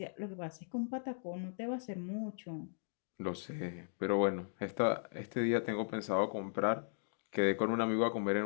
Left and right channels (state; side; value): silent; right; digital silence